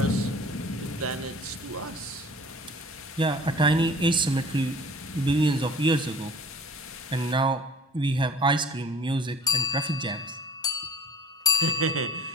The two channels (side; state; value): both; normal; correlation 0.48